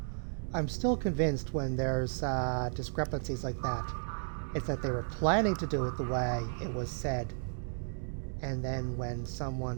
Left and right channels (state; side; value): silent; left; digital silence